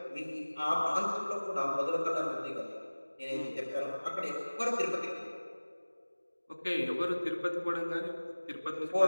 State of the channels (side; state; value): both; inverted; correlation -1.00